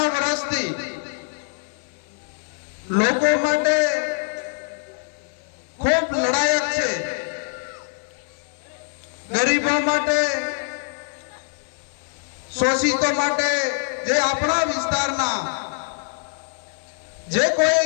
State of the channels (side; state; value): right; silent; 63 dB below the other